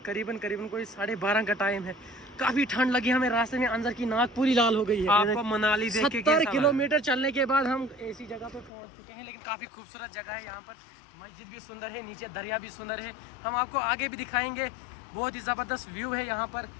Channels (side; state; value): right; drops out; at 8.7 s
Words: करीबन कोई 12:30 का टाइम है। काफी ठंड लगी हमें रास्ते में, अंदर की नाक पूरी लाल हो गई है। आपको मनाली देख के 70 किलोमीटर चलने के बाद हम ऐसी जगह पे पहुंच चुके हैं। लेकिन काफी खूबसूरत जगह है यहाँ पर। मस्जिद भी सुंदर है, नीचे दरिया भी सुंदर है। हम आपको आगे भी दिखाएंगे। बहुत ही जबरदस्त व्यू है यहाँ पर,